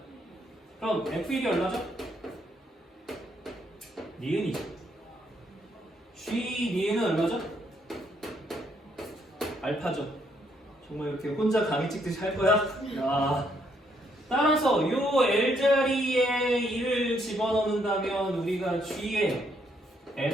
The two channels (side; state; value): both; normal; correlation 0.72